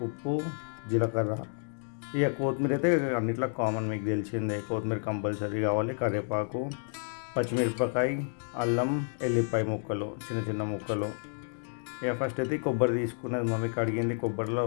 ఉప్పు, జీలకర్ర. ఇక కొత్తిమీర అయితే అన్నిట్లో కామన్, మీకు తెలిసిందే, కొత్తిమీర కంపల్సరీ కావాలి. కరివేపాకు, పచ్చిమిరపకాయ, అల్లం, ఎల్లిపాయ ముక్కలు, చిన్న చిన్న ముక్కలు. ఇక ఫస్ట్ అయితే కొబ్బరి తీసుకున్నది మమ్మీ, కడిగింది కొబ్బరిలో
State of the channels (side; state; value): right; silent; 57 dB below the other